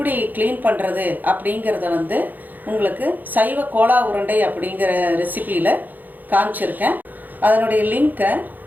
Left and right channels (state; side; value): late; left; 0.085 ms